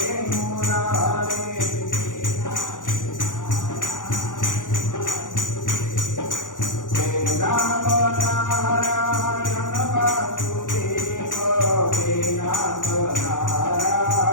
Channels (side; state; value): right; late; 0.87 ms